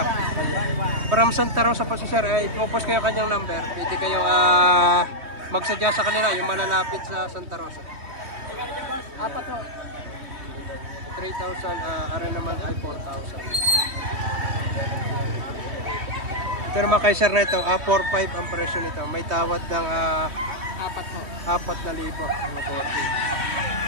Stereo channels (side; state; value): left; late; 3.2 ms